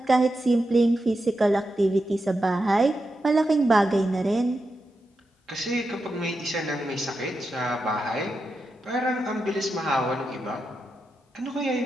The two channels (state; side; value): normal; both; correlation 0.88